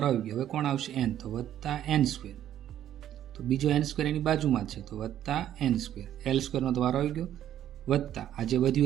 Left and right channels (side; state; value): left; quieter; 11.3 dB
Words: આવી ગયો. હવે કોણ આવશે, n, તો +n². તો બીજો n² એની બાજુમાં છે, તો +n². l² નો તો વારો આવી ગયો, વત્તા આ જે